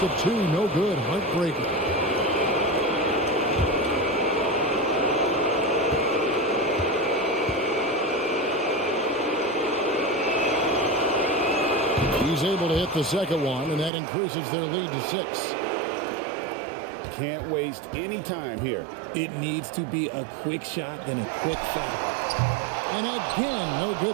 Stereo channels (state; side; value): drops out; left; at 13.9 s